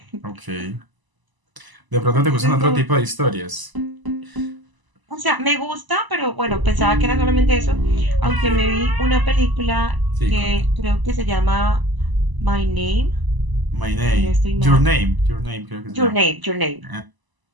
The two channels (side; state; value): left; late; 1.0 ms